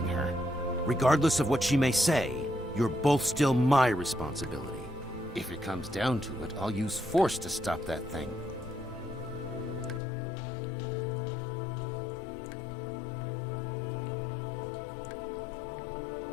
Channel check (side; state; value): right; drops out; at 10.0 s